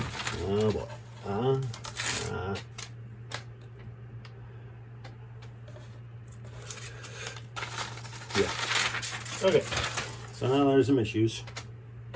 Oh boy. Yeah. Okay. So now there's some issues.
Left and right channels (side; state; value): both; identical; correlation 1.00